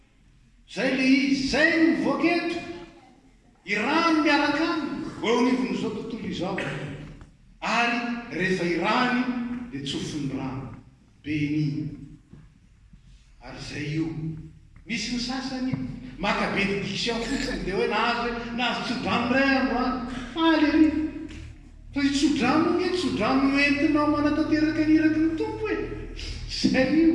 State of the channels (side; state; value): both; identical; correlation 1.00